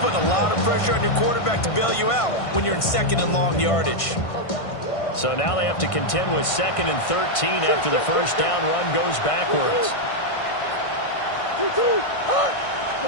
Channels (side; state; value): right; late; 1.5 ms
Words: a lot of pressure on your quarterback to bail you out when you're in 2nd and long yardage. So now they have to contend with 2nd and 13 after the first down run goes backwards.